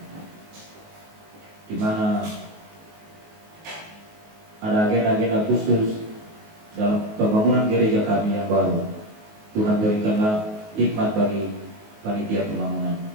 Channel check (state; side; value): late; left; 19 ms